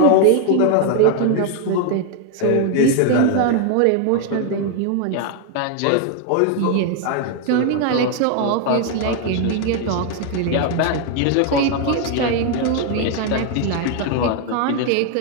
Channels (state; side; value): different; both; correlation 0.01